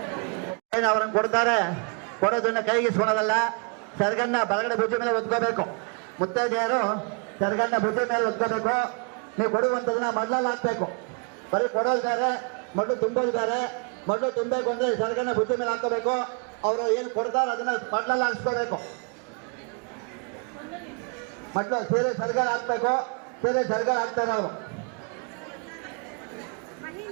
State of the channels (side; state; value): left; quieter; 38.8 dB